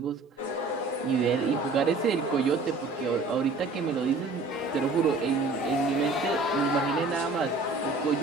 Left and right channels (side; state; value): left; quieter; 3.5 dB